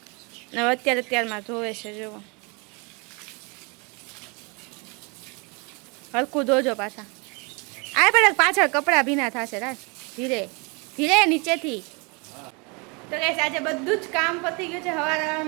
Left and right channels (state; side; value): quieter; left; 30.9 dB